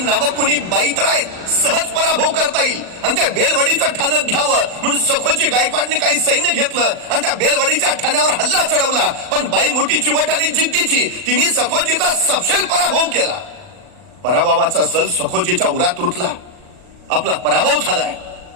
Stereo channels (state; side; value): late; left; 39 ms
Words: कुणी बाई तर आहेत, सहज पराभव करता येईल आणि त्या बेलवाडीचं ठाणं घ्यावं म्हणून सखोजी गायकवाडने काही सैन्य घेतलं आणि त्या बेलवाडीच्या ठाण्यावर हल्ला चढवला. पण बाई मोठी चिवट आणि जिद्दीची, तिने सखोजीचा सपशेल पराभव केला. पराभवाचा सल सखोजीच्या उरात रुतला. आपला पराभव झालाय